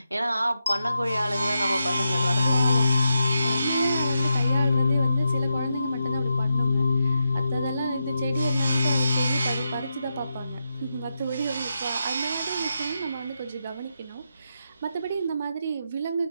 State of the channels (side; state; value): both; inverted; correlation -0.86